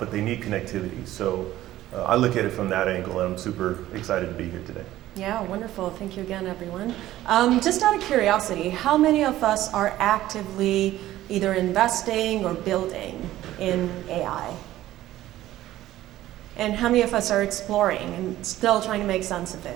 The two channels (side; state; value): left; quieter; 14.6 dB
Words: they need connectivity. So I look at it from that angle, and I'm super excited to be here today. Yeah, wonderful. Thank you again, everyone. Just out of curiosity, how many of us are actively either investing or building in AI? And how many of us are exploring and still trying to make sense of